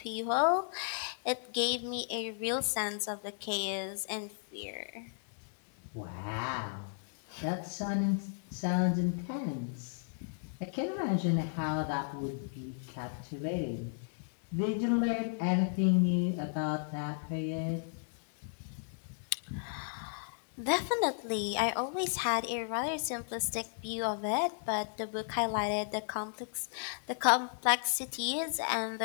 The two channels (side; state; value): right; silent; 55 dB below the other